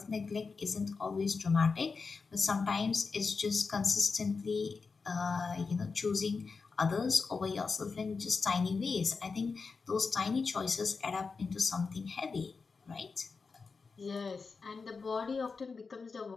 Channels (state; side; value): quieter; right; 4.7 dB